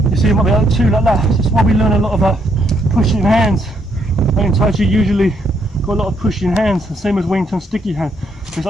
You see, it might be like two like that. That's why we learn a lot about pushing hands. In TAIJI usually got a lot of pushing hands, the same as Wing Chun sticky hand. It's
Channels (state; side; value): normal; both; correlation 0.74